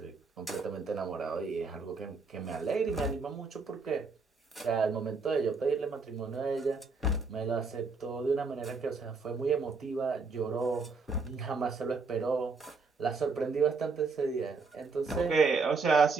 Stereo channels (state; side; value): quieter; left; 4.3 dB